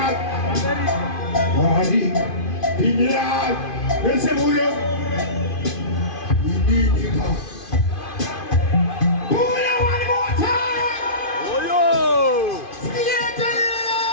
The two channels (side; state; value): right; late; 2.5 ms